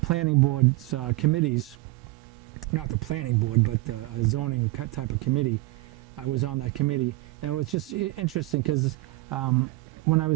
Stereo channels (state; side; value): quieter; left; 20.6 dB